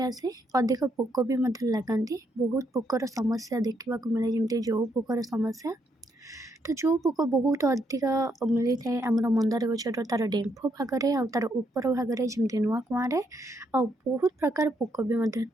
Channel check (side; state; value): both; normal; correlation 0.75